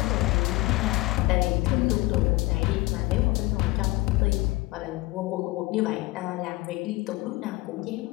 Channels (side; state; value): right; quieter; 20.9 dB